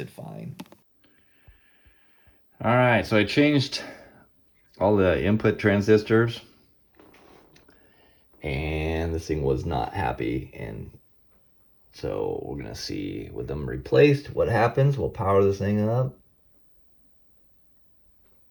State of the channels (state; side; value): identical; both; correlation 1.00